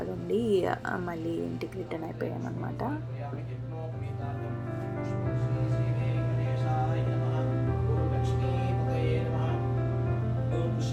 ఉండి మళ్ళీ ఇంటికి return అయిపోయామన్నమాట.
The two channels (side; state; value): both; identical; correlation 1.00